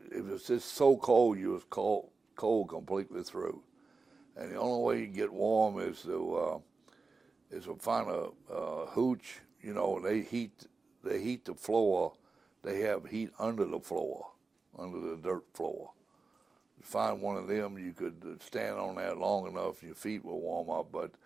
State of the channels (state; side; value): quieter; left; 4.1 dB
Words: was just so cold. You was cold completely through. And the only way you get warm is to find a hooch. They heat the floor. They have heat under the floor, under the dirt floor. Find one of them, you could stand on that long enough, your feet will warm up. But